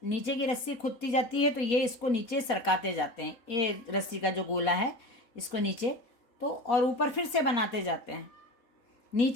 नीचे की रस्सी खुदती जाती है तो ये इसको नीचे सरकाते जाते हैं, ये रस्सी का जो गोला है इसको नीचे, तो और ऊपर फिर से बनाते जाते हैं।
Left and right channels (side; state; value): right; late; 4.2 ms